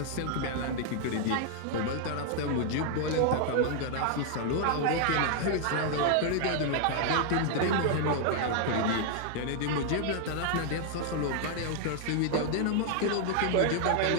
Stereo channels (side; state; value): both; different; correlation 0.00